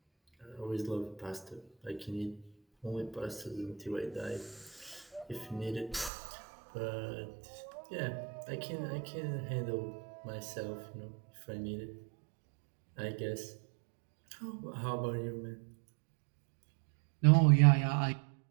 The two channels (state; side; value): drops out; left; at 6.1 s